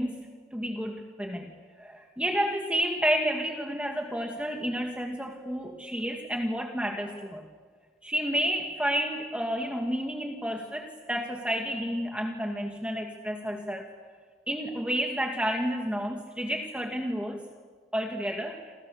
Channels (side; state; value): both; normal; correlation 0.79